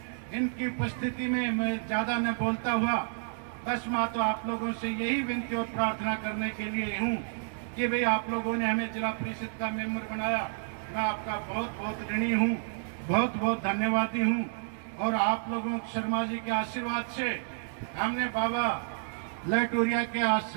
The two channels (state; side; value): silent; left; digital silence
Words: इनकी उपस्थिति में मैं ज्यादा न बोलता हुआ बस मैं तो आप लोगों से यही विनती और प्रार्थना करने के लिए हूँ कि भाई आप लोगों ने हमें जिला परिषद का मेंबर बनाया, मैं आपका बहुत बहुत ऋणी हूँ, बहुत बहुत धन्यवादी हूँ। और आप लोगों शर्मा जी के आशीर्वाद से हमने बाबा लहटूरिया के